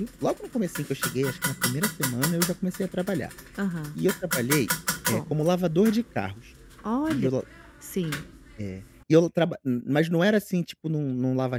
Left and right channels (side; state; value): both; identical; correlation 1.00